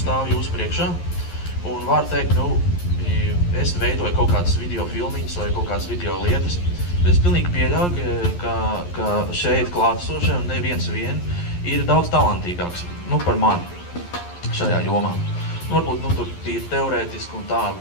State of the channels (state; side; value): late; right; 11 ms